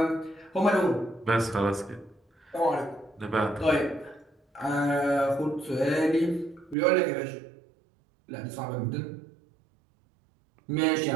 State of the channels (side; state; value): left; drops out; at 6.8 s